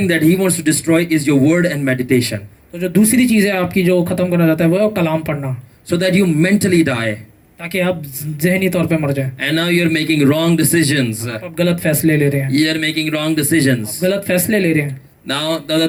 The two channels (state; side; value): identical; both; correlation 1.00